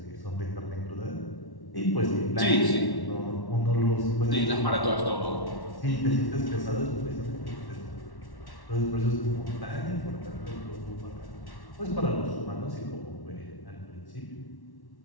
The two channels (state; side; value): late; right; 1.1 ms